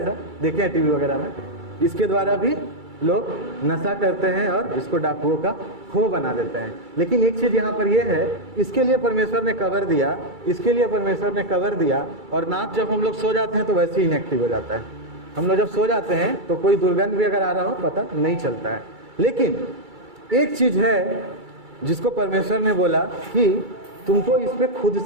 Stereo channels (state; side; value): late; left; 2.3 ms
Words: ऐसा, देखे टीवी वगैरह में। इसके द्वारा भी लोग नशा करते हैं और इसको डाकुओं का खो बना देते हैं। लेकिन एक चीज यहाँ पर यह है, इसके लिए परमेश्वर ने कवर दिया, इसके लिए परमेश्वर ने कवर दिया। और नाक जब हम लोग सो जाते हैं तो वैसे ही इनएक्टिव हो जाता है। हम लोग जब सो जाते हैं तो कोई दुर्गंध भी अगर आ रहा हो पता नहीं चलता है। लेकिन एक चीज है जिसको परमेश्वर ने बोला कि तुमको इस पे खुद